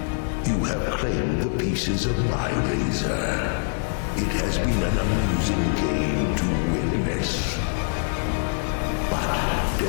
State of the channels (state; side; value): silent; right; digital silence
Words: You have claimed the pieces of my razor. It has been an amusing game to witness. But